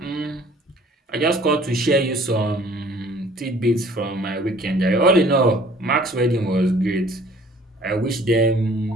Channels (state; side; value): normal; both; correlation 0.54